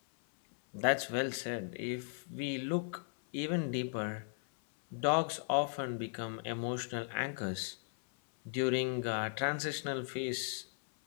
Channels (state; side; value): silent; right; 53 dB below the other